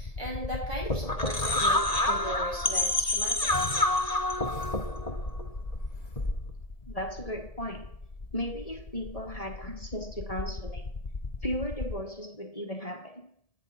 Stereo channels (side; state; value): right; late; 1.7 ms